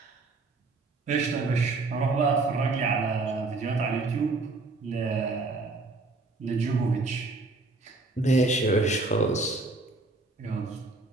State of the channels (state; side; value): quieter; left; 3.5 dB